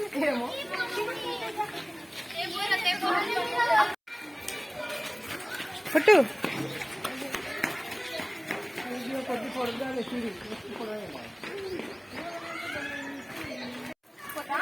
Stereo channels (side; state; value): both; identical; correlation 1.00